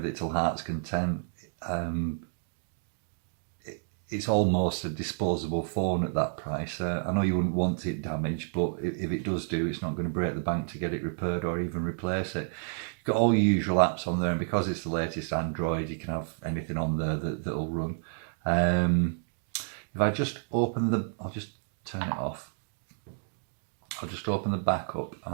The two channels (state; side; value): silent; left; digital silence